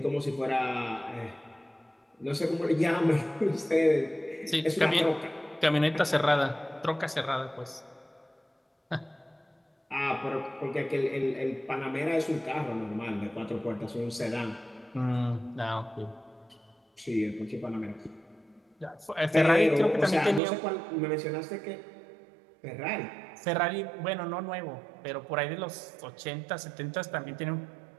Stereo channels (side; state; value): left; drops out; at 20.4 s